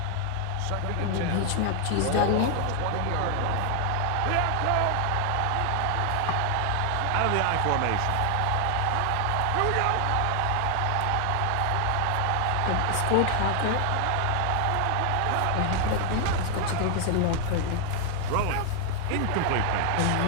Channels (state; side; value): different; both; correlation 0.00